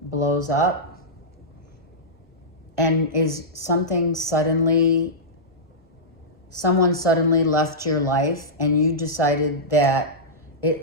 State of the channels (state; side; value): normal; both; correlation -0.14